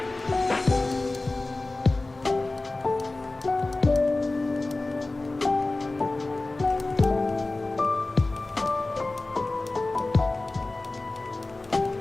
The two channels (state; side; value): quieter; right; 3.1 dB